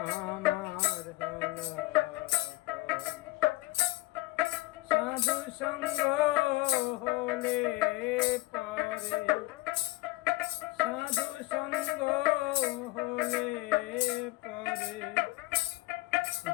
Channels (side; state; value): right; quieter; 20.4 dB